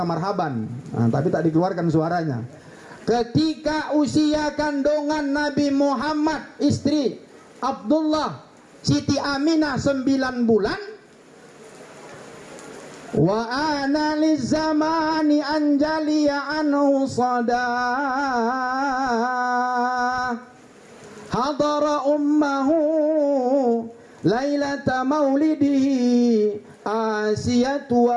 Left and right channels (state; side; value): identical; both; correlation 1.00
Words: marhaban. Nah, tapi tak dikeluarkan suaranya. Ketika usia kandungan Nabi Muhammad, istri Abdullah, Siti Aminah 9 bulan. Wa ana lizamani anjaliya anhu sadah. Hadara ummahu Lailata maulidihi Asiyatu